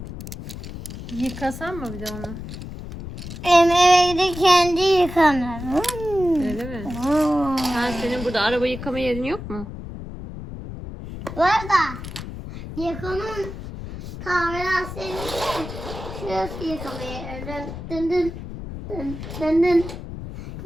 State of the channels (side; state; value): left; noise; rumble, 10 dB below the sound